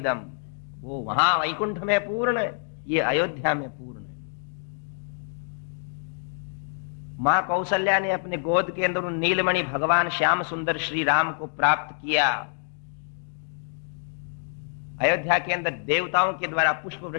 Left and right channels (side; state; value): right; silent; digital silence